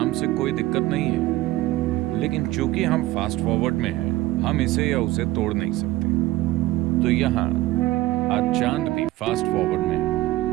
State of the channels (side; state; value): left; quieter; 17.1 dB